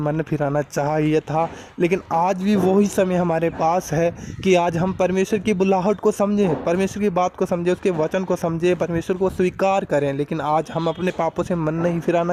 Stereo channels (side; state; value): both; identical; correlation 1.00